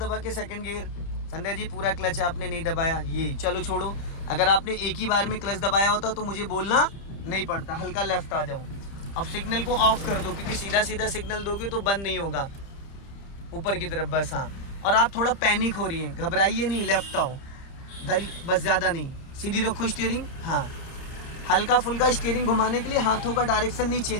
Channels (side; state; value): right; late; 30 ms